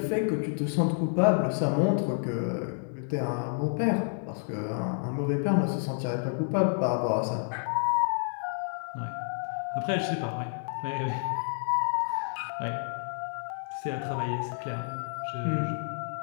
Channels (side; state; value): right; silent; digital silence